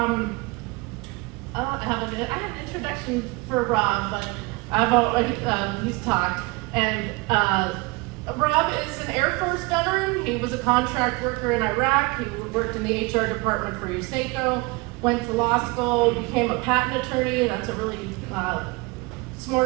have an introduction for Rob, but he's talked, and Rob is an Air Force veteran. He was a contract worker in Iraq. He worked in the HR department for Zucco, went to law school, became a patent attorney. That's a really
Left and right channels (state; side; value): quieter; left; 25.8 dB